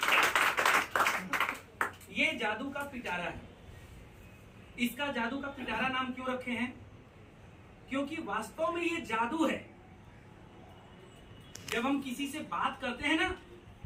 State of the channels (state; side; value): identical; both; correlation 1.00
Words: ये जादू का पिटारा है। इसका जादू का पिटारा नाम क्यों रखे हैं? क्योंकि वास्तव में ये जादू है। जब हम किसी से बात करते हैं ना